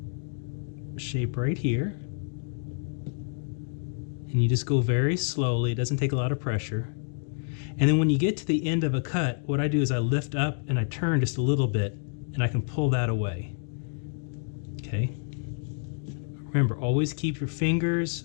shape right here. And you just go very slowly, it doesn't take a lot of pressure. And then when you get to the end of a cut, what I do is I lift up and I turn just a little bit and I can pull that away. Okay. Remember, always keep your fingers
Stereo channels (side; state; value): right; silent; 59 dB below the other